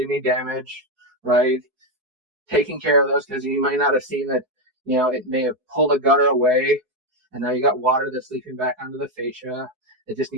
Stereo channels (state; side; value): late; left; 4.7 ms